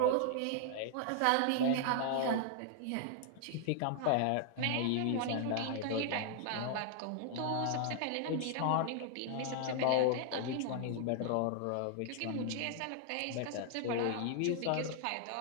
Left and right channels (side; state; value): both; different; correlation 0.00